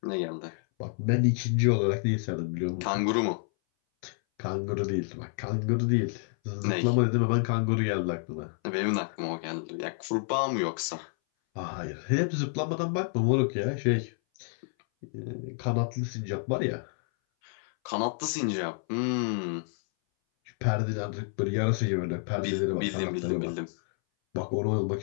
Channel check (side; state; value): right; silent; 58 dB below the other